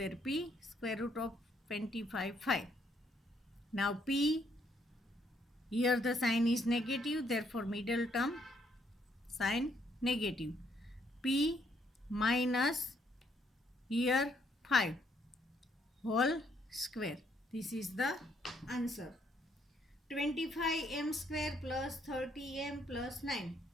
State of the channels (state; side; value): normal; both; correlation 0.70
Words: p, square root of 25 5. Now p, here the sign is negative, therefore middle term sign negative. P minus here 5 whole square. This is the answer. 25m square plus 30m plus 9.